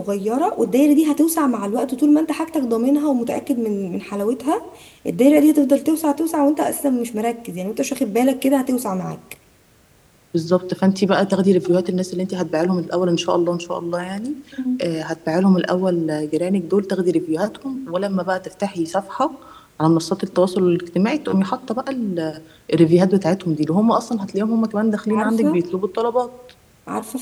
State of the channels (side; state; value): both; identical; correlation 1.00